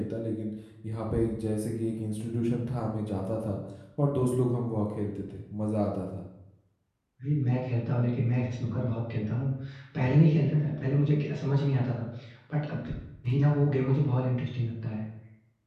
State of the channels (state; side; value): identical; both; correlation 1.00